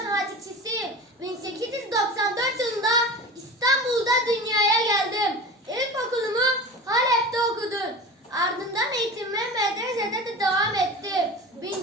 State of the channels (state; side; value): normal; both; correlation 0.33